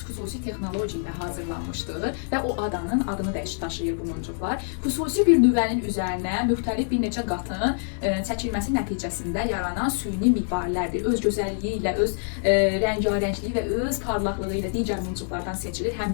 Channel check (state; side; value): silent; right; 61 dB below the other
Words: texnologiya ilə hazırlanmışdır və o adanın adını daşıyır bu muncuqlar. Xüsusi bir nüvənin üzərinə müxtəlif bir neçə qatın çəkilməsi nəticəsində yaranan süni mirvarilərdir. Öz gözəlliyi ilə, öz rəngarəngliyi və öz parlaqlığı ilə digər muncuqlardan seçilir.